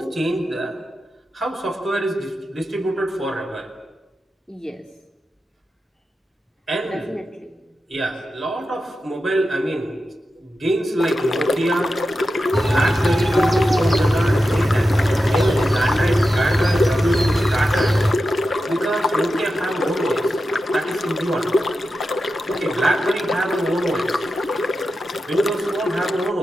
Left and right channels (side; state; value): both; normal; correlation 0.90